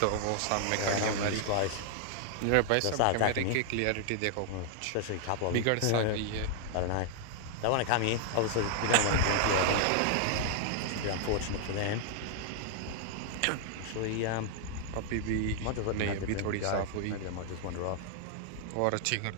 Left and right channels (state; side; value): different; both; correlation 0.00